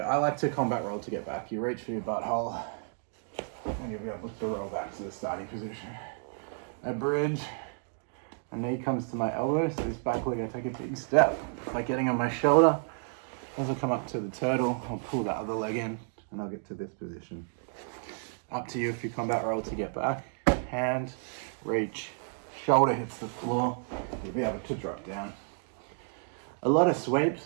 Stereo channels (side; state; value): left; silent; 57 dB below the other